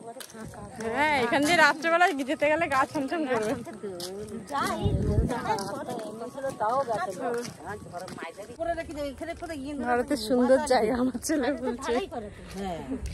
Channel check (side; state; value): both; identical; correlation 1.00